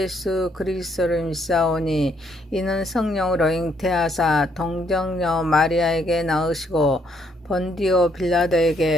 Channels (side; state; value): both; normal; correlation 0.71